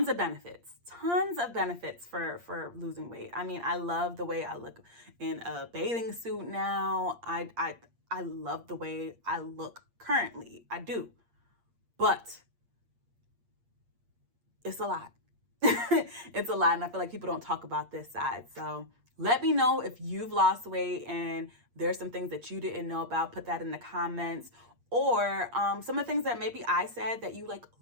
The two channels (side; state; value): left; late; 8.6 ms